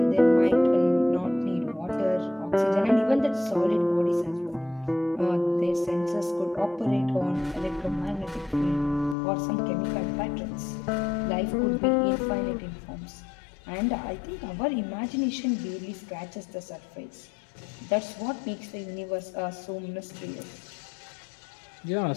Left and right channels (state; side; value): drops out; right; at 9.2 s